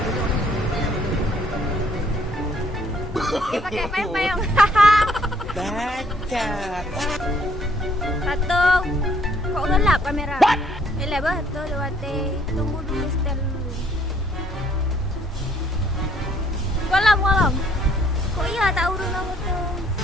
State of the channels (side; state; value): both; normal; correlation 0.65